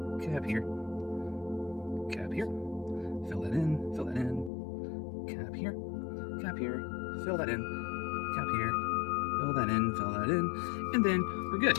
Cap here. Cap here. Fill that in. Fill that in. Cap here. Cap here. Fill that in. Cap here. Fill that in. Fill that in. And then we're good.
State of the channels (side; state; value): right; drops out; at 4.5 s